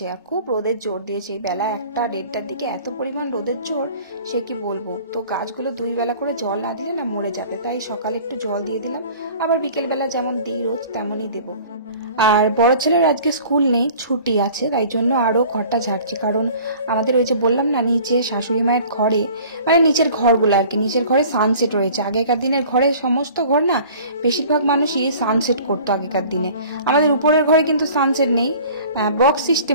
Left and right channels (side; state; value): both; inverted; correlation -0.47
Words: আর খুব রোদের জোর দিয়েছে। এই বেলা 1টা 1:30টার দিকে এত পরিমাণ রোদের জোর, সে কি বলবো। তো গাছগুলো 2 বেলা করে জল না দিলে না মরে যাবে, তাই সকালে একটু জল দিয়ে দিলাম, আবার বিকেলবেলা যেমন দিই রোজ তেমনই দেবো। আর বড় ছেলের আজকে স্কুল নেই, ছুটি আছে, তাই জন্য আরও ঘরটা ঝাড়ছি। কারণ আমাদের ওই যে বললাম না, নিচে শাশুড়ি মায়ের ঘরে, মানে নিচের ঘরগুলো আর কি, নিচের ঘরে সানসেট রয়েছে। আগেকার দিনের ঘরে সমস্ত ঘর না, বেশিরভাগ মানুষই সানসেট করতো আগেকার দিনে। আমাদের উপরের ঘরে কিন্তু সানসেট নেই, বক্স